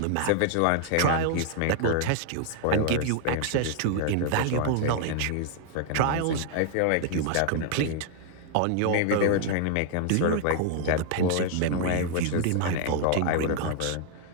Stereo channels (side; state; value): both; different; correlation 0.00